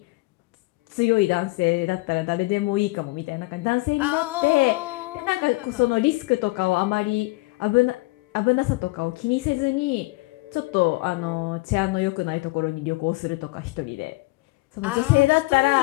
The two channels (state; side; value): quieter; right; 23.0 dB